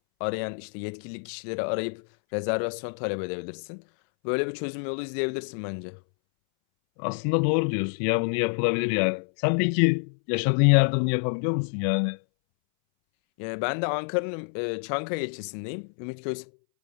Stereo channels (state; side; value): silent; right; 60 dB below the other